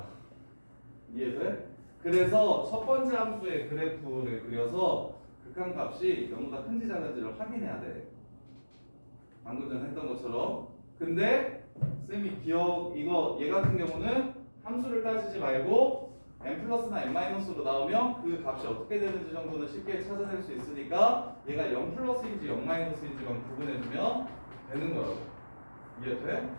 이해돼? 그래서 첫 번째 함수의 그래프를 그려서 극한값이 0보다 큰지 작은지를 확인해야 돼. 방금 전에 했던 것처럼. 근데 쌤이 이거 얘 같은 경우는 함수를 따지지 말고 n 플러스나 n 마이너스로 나오면 그 값이 어떻게 되는지 정도는 쉽게 찾아낼 수 있으니까 얘가 0 플러스인지 0 마이너스인지만 구분해주면 되는 거라고. 이해돼?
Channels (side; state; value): both; inverted; correlation -1.00